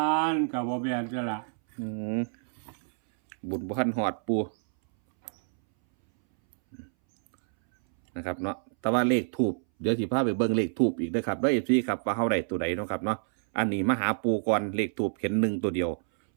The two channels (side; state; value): left; silent; 59 dB below the other